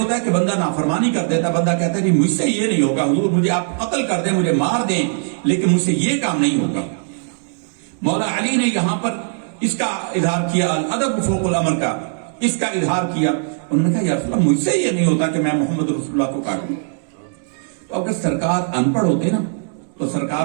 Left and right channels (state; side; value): silent; left; digital silence